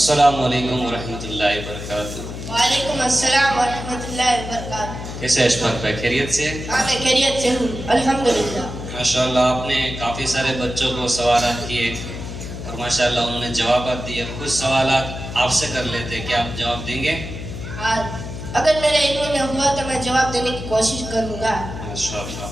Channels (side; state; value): left; noise; hum, 8 dB below the sound